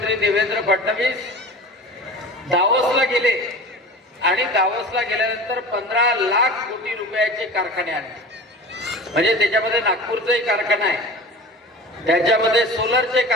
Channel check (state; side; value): normal; both; correlation 0.36